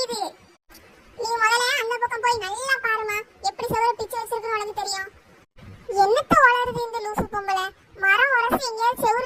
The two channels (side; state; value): both; identical; correlation 1.00